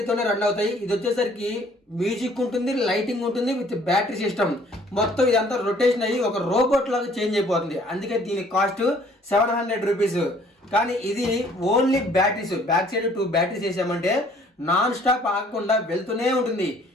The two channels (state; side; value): normal; both; correlation 0.58